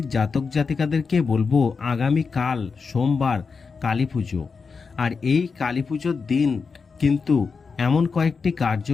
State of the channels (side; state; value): right; quieter; 5.1 dB